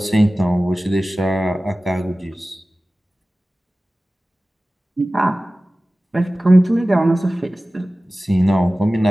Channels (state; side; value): normal; both; correlation 0.97